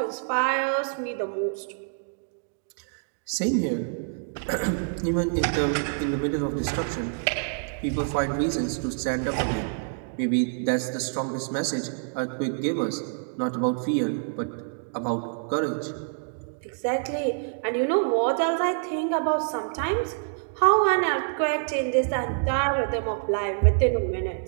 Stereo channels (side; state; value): left; silent; digital silence